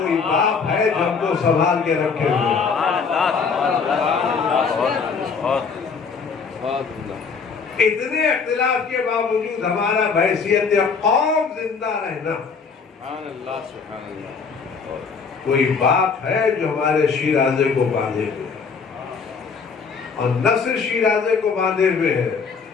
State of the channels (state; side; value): quieter; right; 5.4 dB